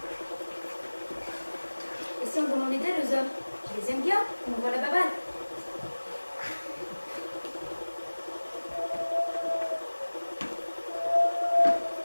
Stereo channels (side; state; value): both; inverted; correlation -1.00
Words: Et si on demandait d'aide aux hommes? Je les aime bien, on voit la babane.